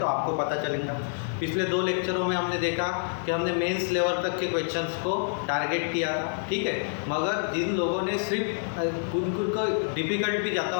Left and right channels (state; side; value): silent; right; digital silence